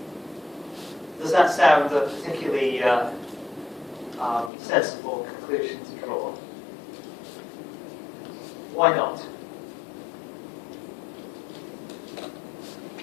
Does that sound a particularly sensible conclusion to draw? Why not?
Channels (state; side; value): drops out; right; at 4.5 s